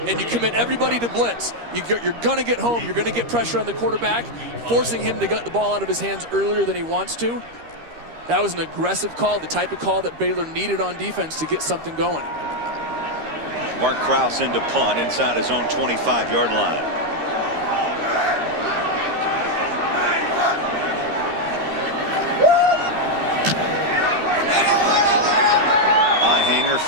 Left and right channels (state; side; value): late; left; 13 ms